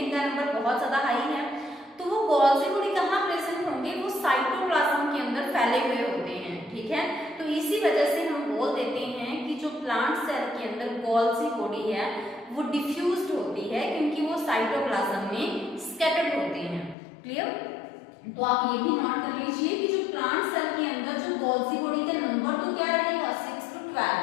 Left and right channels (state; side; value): drops out; right; at 16.9 s